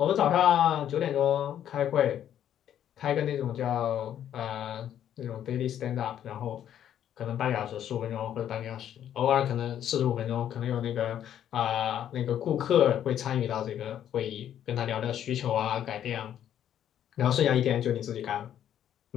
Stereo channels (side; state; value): right; quieter; 10.4 dB